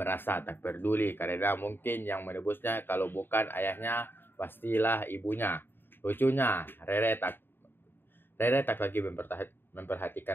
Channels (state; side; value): late; right; 0.099 ms